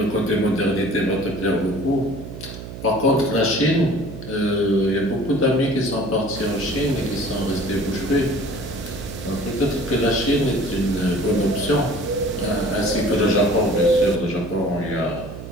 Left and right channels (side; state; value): right; noise; hum, 11 dB below the sound